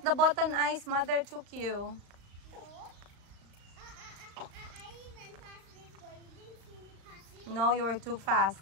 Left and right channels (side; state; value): left; late; 35 ms